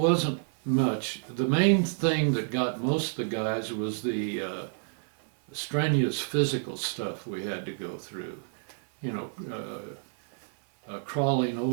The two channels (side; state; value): left; silent; 58 dB below the other